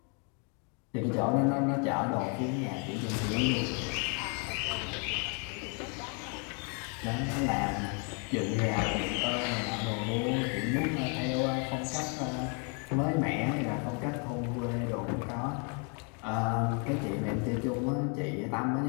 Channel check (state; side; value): quieter; right; 37.7 dB